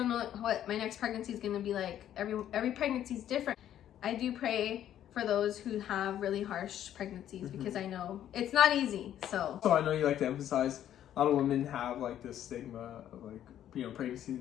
know what my next pregnancy is going to be like. Every pregnancy is different. I do pray for those who have really harsh pregnancies, mm-hmm. because I know it's not easy. So I know you like to emphasize, a lot of women have this stigma of pregnancy,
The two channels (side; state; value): right; quieter; 11.1 dB